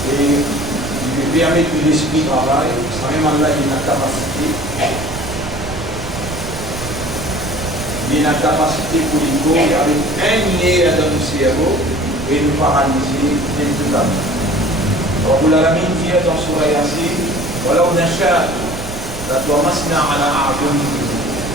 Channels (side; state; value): right; noise; rumble, 11 dB below the sound